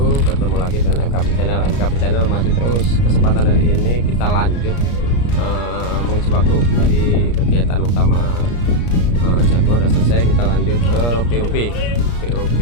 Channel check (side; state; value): right; late; 34 ms